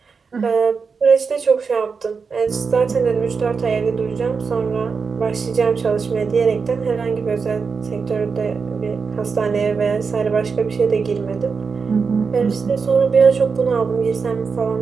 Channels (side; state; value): left; quieter; 5.3 dB